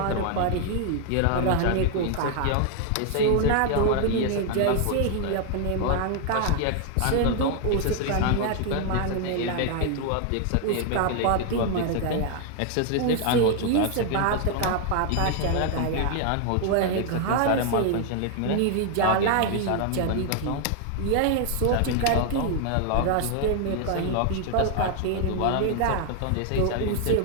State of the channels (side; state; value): both; different; correlation 0.00